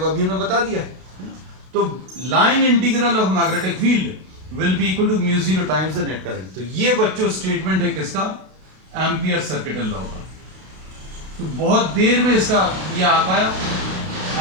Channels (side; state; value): left; late; 32 ms